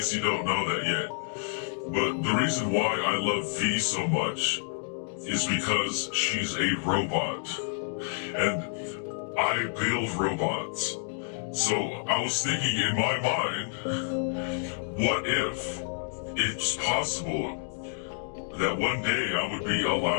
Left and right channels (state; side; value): silent; right; digital silence